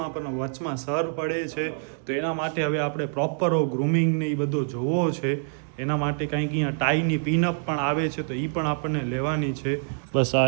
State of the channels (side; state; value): left; silent; digital silence